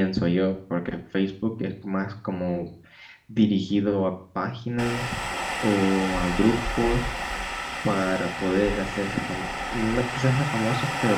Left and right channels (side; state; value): both; identical; correlation 1.00